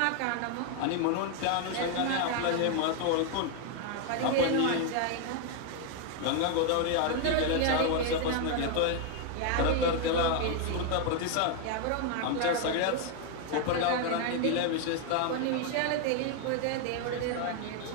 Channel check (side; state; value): both; different; correlation 0.01